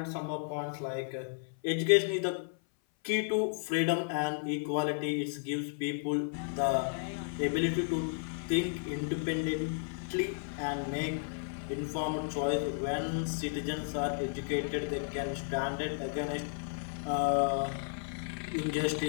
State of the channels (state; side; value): silent; right; 55 dB below the other